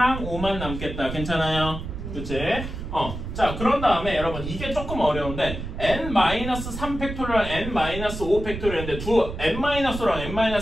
5만 남겠다. 괜찮아요? 그치? 자, 그런 다음에 여러분 이게 조금 어려운데 n-3 팩토리얼, n-5 팩토리얼인데 두 n-랑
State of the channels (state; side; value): noise; right; rumble, 7 dB below the sound